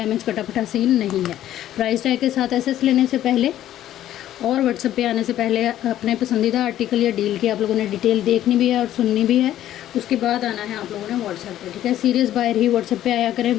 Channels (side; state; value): right; quieter; 12.5 dB